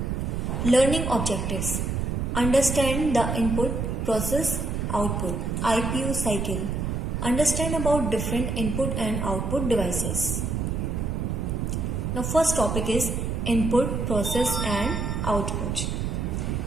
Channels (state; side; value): noise; right; rumble, 1 dB below the sound